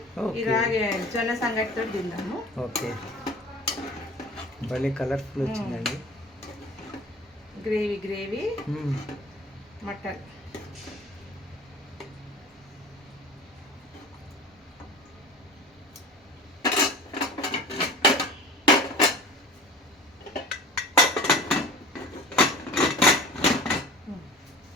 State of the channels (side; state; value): both; normal; correlation 0.40